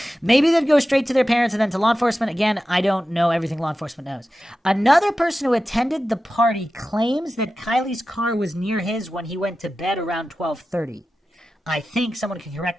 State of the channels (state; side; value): normal; both; correlation 0.93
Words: Maybe they'd go straight to their parents and then to law enforcement. Again, I don't know everything law enforcement knows. Another person who attended the party claims that Kylie's car was near his when he went to bed around 12:30. I think someone can